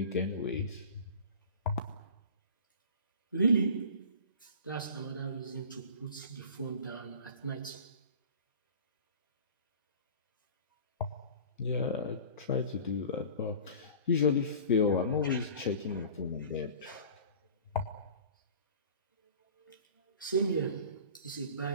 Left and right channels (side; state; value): both; inverted; correlation -0.41